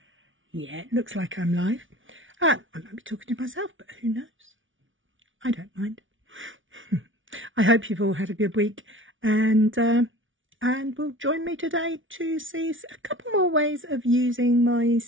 Yeah, it looks like I'm live. I might be talking to myself, but who knows? I don't mind. I hope you've all had a good week, and will join me today to see a couple more ways of using my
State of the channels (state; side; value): late; left; 0.56 ms